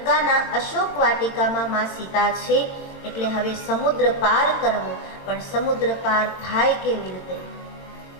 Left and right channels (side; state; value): right; late; 22 ms